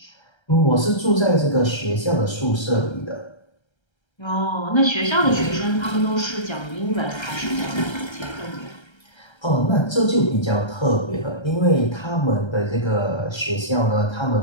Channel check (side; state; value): right; late; 1.3 ms